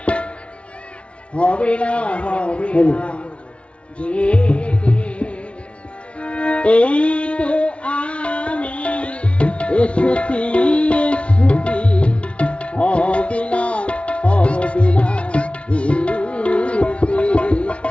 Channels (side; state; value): right; late; 0.060 ms